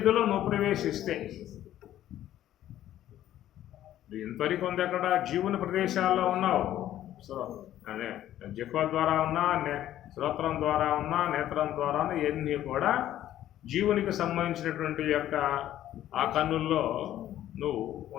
నువ్వు ప్రవేశిస్తే. ఇంతవరకు ఉంది అక్కడ జీవుని ప్రదేశాల్లో ఉన్నావు. అదే జిహ్వ ద్వారా ఉన్నా, శ్రోత్రం ద్వారా ఉన్నా, నేత్రం ద్వారా ఇవన్నీ కూడా జీవునికి సంబంధించినటువంటి యొక్క ఆ కన్నుల్లో నువ్వు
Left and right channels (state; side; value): quieter; right; 12.6 dB